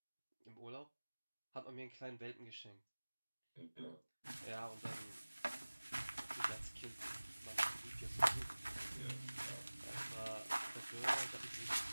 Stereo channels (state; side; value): inverted; both; correlation -1.00